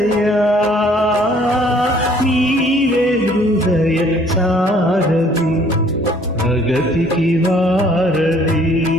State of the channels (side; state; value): both; normal; correlation 0.59